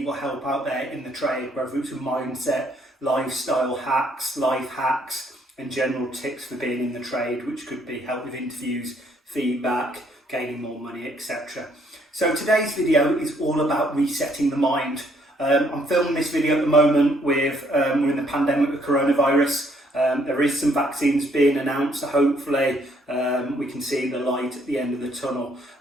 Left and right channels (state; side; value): normal; both; correlation 0.67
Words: help out there in the trade, whether it's a mindset, lifestyle hacks, life hacks, and general tips for being in the trade, which could be help with interviews, feedback, gaining more money, etc. So today's video is all about resetting the mind. I'm filming this video at the moment with, we're in the pandemic with coronavirus. There is some vaccines being announced, so hopefully we can see the light at the end of the tunnel.